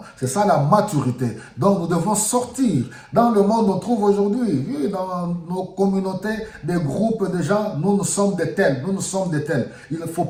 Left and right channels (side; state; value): both; identical; correlation 1.00